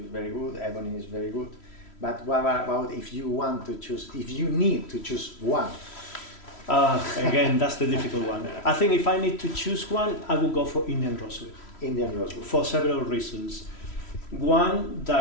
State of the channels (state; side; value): late; right; 3.1 ms